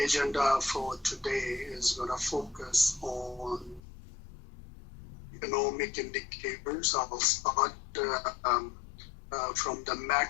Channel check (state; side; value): drops out; right; at 3.8 s